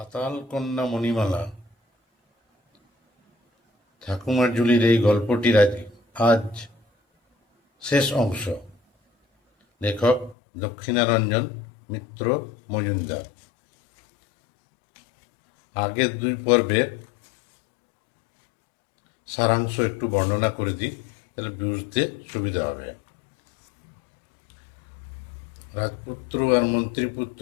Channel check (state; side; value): drops out; right; at 10.4 s